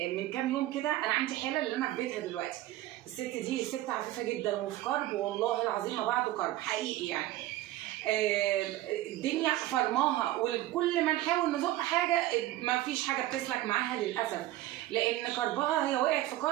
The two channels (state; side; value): quieter; left; 15.3 dB